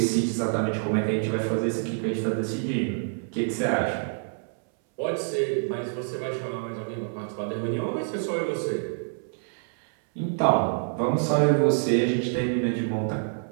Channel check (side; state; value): left; silent; 60 dB below the other